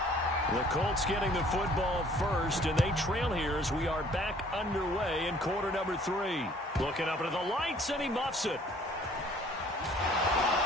The Colts getting the football first, and they trail here as we are back underway in quarter number 3. Looking up into the lights, and he muffs it.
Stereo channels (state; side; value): normal; both; correlation 0.56